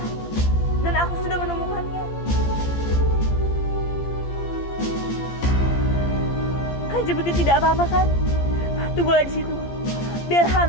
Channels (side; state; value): right; late; 14 ms